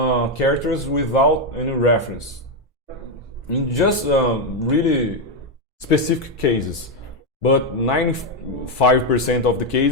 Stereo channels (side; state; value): both; normal; correlation 0.05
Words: without any reference. In just really specific cases, but 95% of the